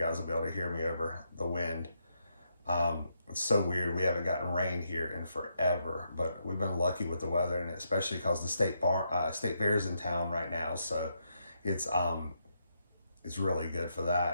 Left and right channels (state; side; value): inverted; both; correlation -0.80